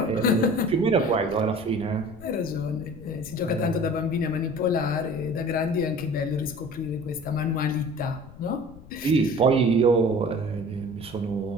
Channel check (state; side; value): noise; left; rumble, 19 dB below the sound